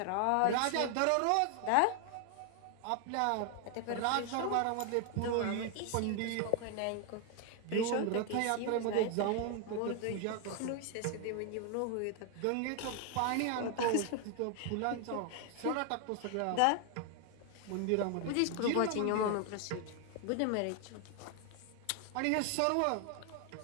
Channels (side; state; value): both; different; correlation 0.00